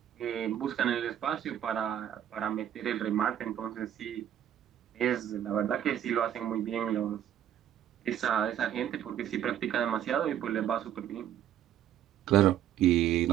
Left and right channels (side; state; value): left; quieter; 10.7 dB